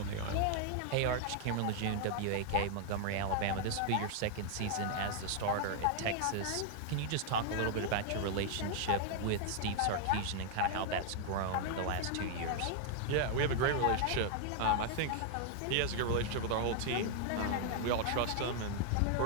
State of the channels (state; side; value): different; both; correlation 0.00